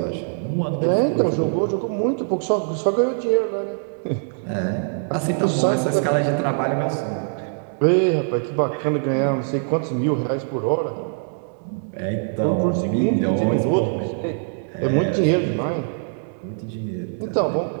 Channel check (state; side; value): silent; left; digital silence